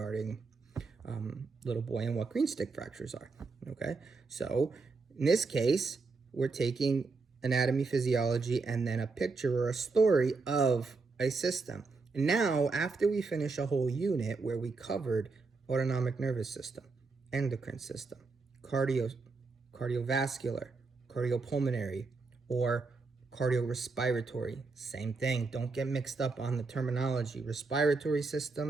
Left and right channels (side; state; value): left; quieter; 4.1 dB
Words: little boy and what green stick fractures are. Okay, so in this case, we're taking anatomy, physiology, and then a picture or a story of a system. And now, after we finish a whole unit where we covered autonomic nervous system, endocrine system, cardiovascular, cardiopulmonary, or cardiorespiratory, same thing. Don't get mixed up on the terminology. Respiratory